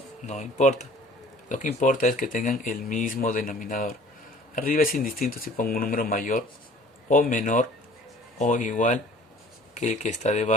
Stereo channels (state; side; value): normal; both; correlation 0.49